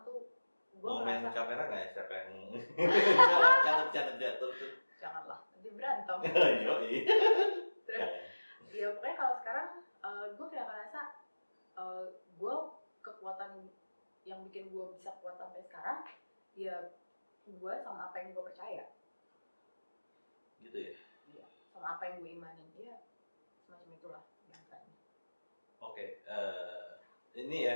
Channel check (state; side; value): inverted; both; correlation -1.00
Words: tuh gue mau main merasa kamera nggak ya, siapa yang canda jatuh tuh? Janganlah, nanti berantem. Yoi. Terus ya pokoknya kalau sekarang gue kayak ngerasa gue kekuatan yang bikin gue bisa kuat sampai sekarang ya gue sama apa yang gue percaya. Gitu ya? Iya, sama apa yang gue imanin, ya semacam itulah biasanya. Oke, ini